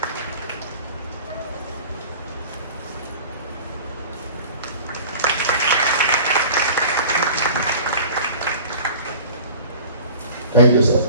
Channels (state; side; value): inverted; both; correlation -0.41